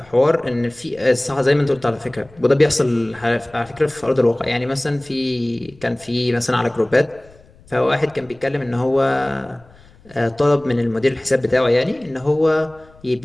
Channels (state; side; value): noise; left; rumble, 26 dB below the sound